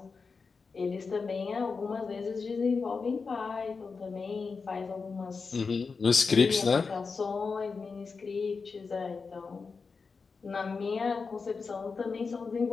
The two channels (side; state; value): right; quieter; 4.8 dB